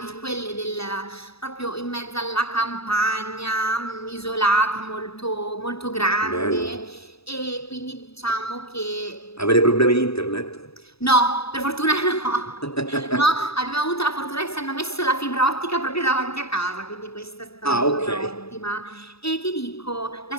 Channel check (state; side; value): late; right; 0.78 ms